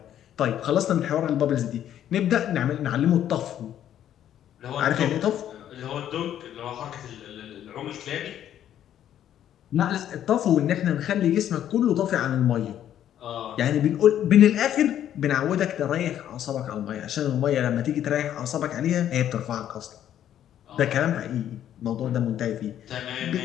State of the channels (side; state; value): right; quieter; 10.8 dB